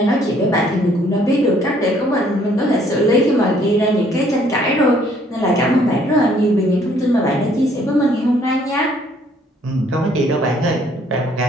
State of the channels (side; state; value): both; normal; correlation 0.63